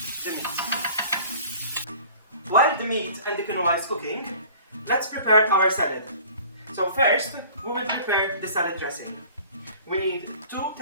the meat. While the meat and the quinoa is cooking, let's prepare our salad. So first, we will prepare the salad dressing. We need 2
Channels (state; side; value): inverted; both; correlation -0.48